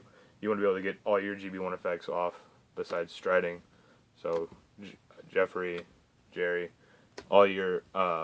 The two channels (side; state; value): both; identical; correlation 1.00